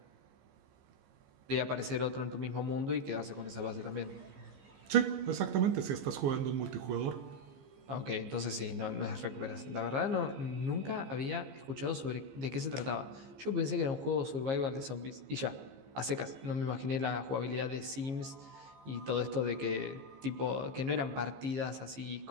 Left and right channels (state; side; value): late; left; 15 ms